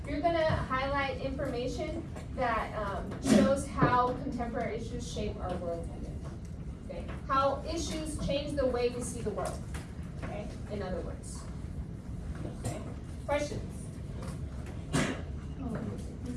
You're gonna highlight information that shows how contemporary issues shape our worldview. Okay? How issues change the way we see the world. Okay? In other words. Okay? Questions?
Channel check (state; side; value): identical; both; correlation 1.00